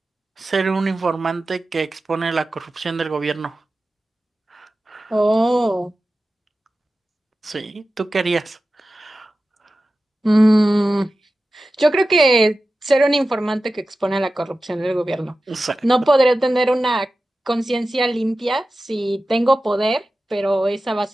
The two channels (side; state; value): both; normal; correlation 0.94